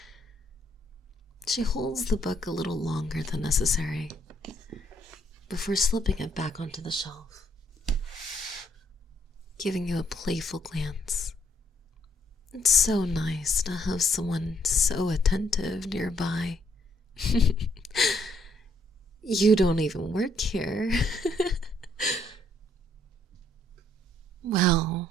She holds the book a little longer than necessary before slipping it back onto the shelf, giving you a playful glance. It's so nice to have someone so attentive nearby. You don't even work here. Well,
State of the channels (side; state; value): both; normal; correlation 0.69